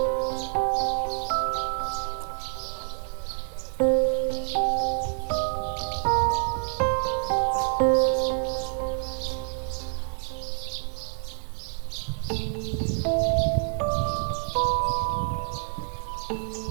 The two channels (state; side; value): silent; left; 60 dB below the other